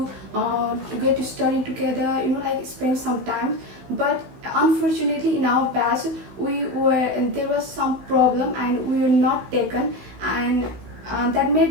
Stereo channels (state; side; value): late; left; 16 ms